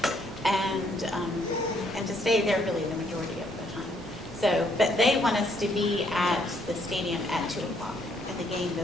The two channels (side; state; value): left; noise; hum, 26 dB below the sound